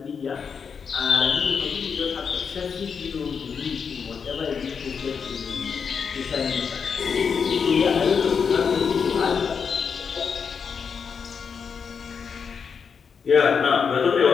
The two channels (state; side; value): quieter; right; 6.2 dB